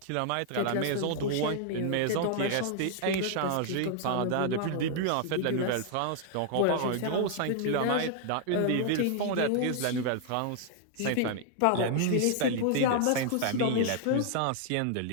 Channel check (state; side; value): different; both; correlation 0.00